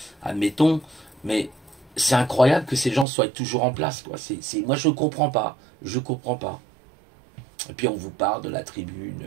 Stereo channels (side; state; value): left; drops out; at 3.1 s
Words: admettons, mais c'est incroyable que ces gens soient toujours en place, quoi. Moi, je ne comprends pas, je comprends pas. Et puis, on vous parle de la tribune